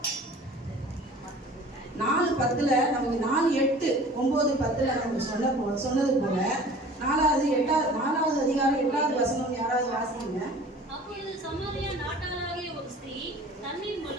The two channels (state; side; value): normal; both; correlation 0.45